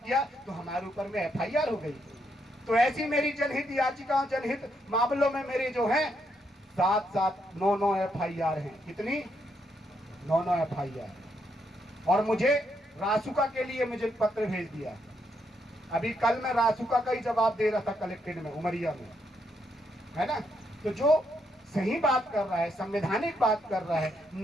किया, तो हमारे ऊपर में FIR हो गई। तो ऐसी मेरी जनहित याचिकाओं, जनहित मामलों में मेरे जो है 9 FIR हैं। कितनी? 9 FIR। और मुझे रासुका के लिए मुझे पत्र भेज दिया। अभी कल मैं रासुका का ही जवाब दे रहा था कलेक्टेड में, उमरिया में, है ना। तो जो सही बात कर रहा है, संवैधानिक बात कर रहा है,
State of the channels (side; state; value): both; normal; correlation 0.77